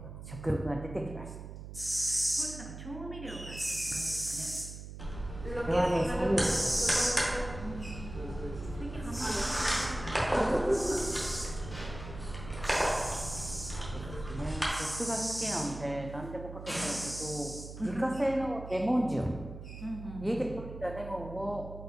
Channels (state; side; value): noise; right; hum, 11 dB below the sound